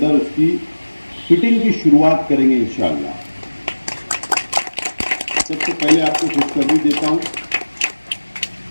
उसकी फिटिंग की शुरुआत करेंगे इंशाअल्लाह। सबसे पहले आपको खुशखबरी देता हूं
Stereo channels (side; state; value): both; inverted; correlation -1.00